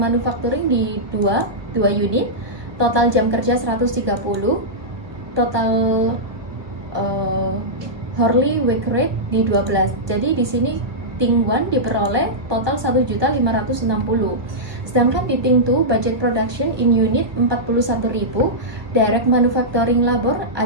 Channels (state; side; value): late; left; 1.5 ms